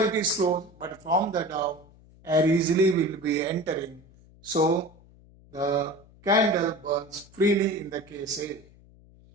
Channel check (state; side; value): noise; left; hum, 25 dB below the sound